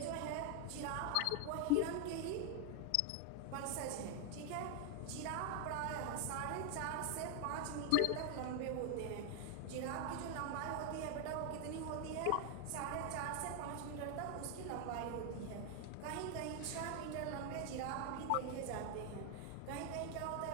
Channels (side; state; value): both; different; correlation 0.00